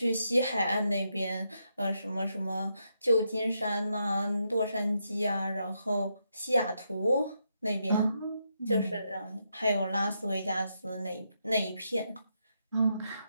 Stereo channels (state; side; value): inverted; both; correlation -0.81